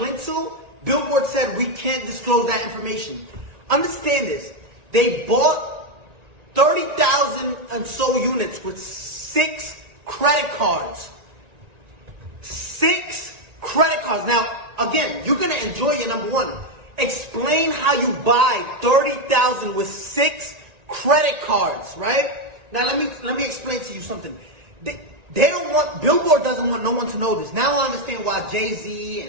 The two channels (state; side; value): late; left; 1.9 ms